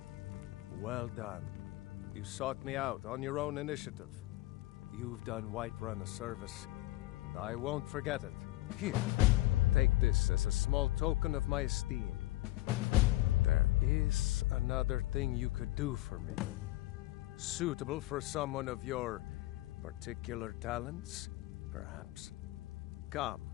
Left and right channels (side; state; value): right; quieter; 17.6 dB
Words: Well done. You sought me out on your own initiative. You've done Whiterun a service, and I won't forget it. Here, take this as a small token of my esteem. There is another thing you could do for me. Suitable for someone of your particular talents, perhaps. Come,